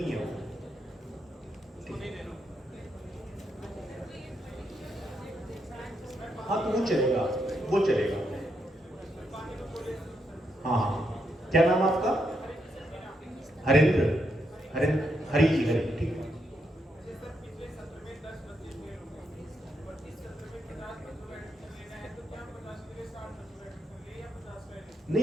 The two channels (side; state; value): both; normal; correlation 0.80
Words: है वो। हाँ तो वो चलेगा, वो चलेगा। हाँ हाँ, क्या नाम आपका? हरेंद्र, हरी जी, हरी, ठीक है।